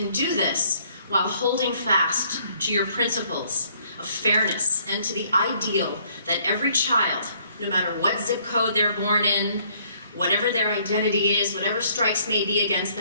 do this while holding fast to your principles of fairness and to the ideal that every child, no matter what zip code they're born in, whatever their identity is, whatever strikes may be against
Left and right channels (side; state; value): both; inverted; correlation -0.64